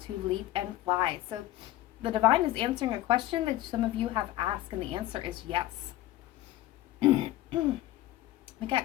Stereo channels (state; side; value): quieter; right; 15.1 dB